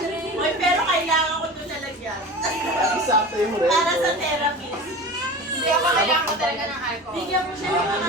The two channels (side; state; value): both; normal; correlation 0.34